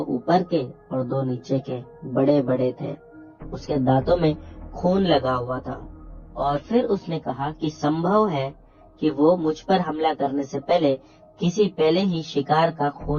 ऊपर के और 2 नीचे के, बड़े बड़े थे। उसके दांतों में खून लगा हुआ था। और फिर उसने कहा कि संभव है कि वो मुझ पर हमला करने से पहले किसी पहले ही शिकार का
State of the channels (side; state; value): both; identical; correlation 1.00